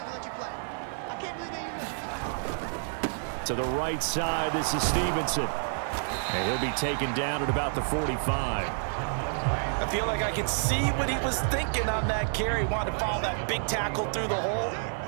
To the right side, this is Stevenson. And he'll be taken down at about the 45. I feel like I could see what he was thinking on that carry. Wanted to follow that big tackle through the hole.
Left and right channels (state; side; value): silent; left; digital silence